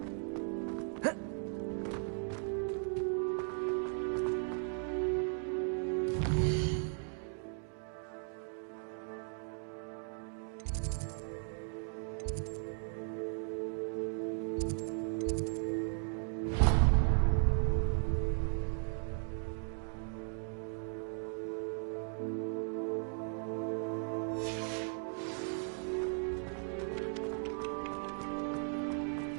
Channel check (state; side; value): silent; left; 53 dB below the other